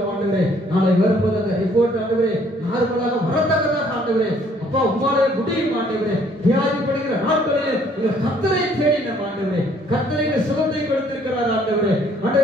ஆண்டவரே. நாளை வரும்போது அந்த ரிப்போர்ட் ஆண்டவரே நார்மலாக வரத்தக்கதாக ஆண்டவரே அப்பா உம்மாலே முடியும் ஆண்டவரே. வியாதிப்படுகிற நாட்களில் உங்கள் கர்த்தரை தேடின ஆண்டவரே, கர்த்தரை சுகத்தை கொடுத்திருக்கிறார் ஆண்டவரே.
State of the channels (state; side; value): normal; both; correlation 0.62